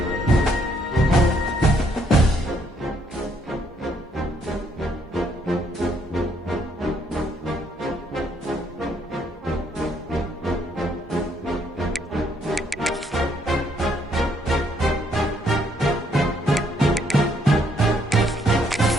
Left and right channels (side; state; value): both; normal; correlation 0.70